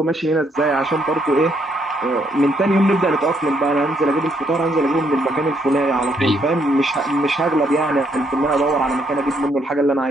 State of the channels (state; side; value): normal; both; correlation 0.72